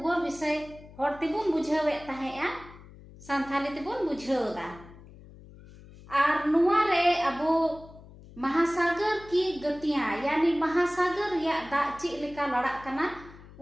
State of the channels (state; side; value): noise; left; hum, 20 dB below the sound